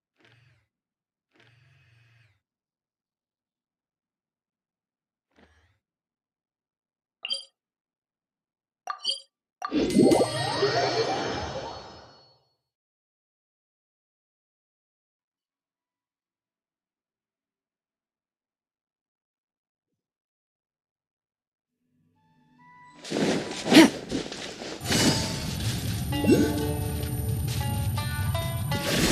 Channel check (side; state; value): both; identical; correlation 1.00